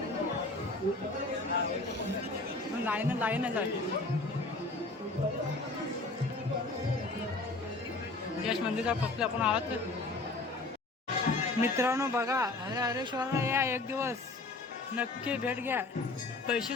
लाईनच आहे. यश मंदिरचा फक्त आपण आहोत मित्रांनो. बघा हरेश्वरला या एक दिवस नक्की भेट घ्या.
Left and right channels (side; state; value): right; quieter; 3.2 dB